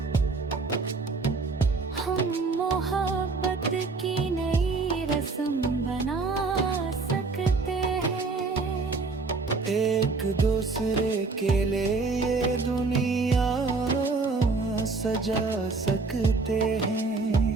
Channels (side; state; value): left; quieter; 4.0 dB